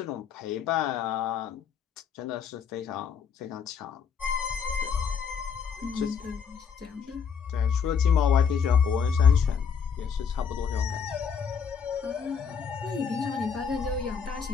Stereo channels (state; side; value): quieter; right; 6.6 dB